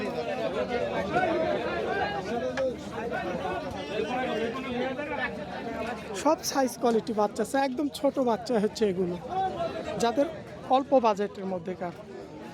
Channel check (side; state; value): both; identical; correlation 1.00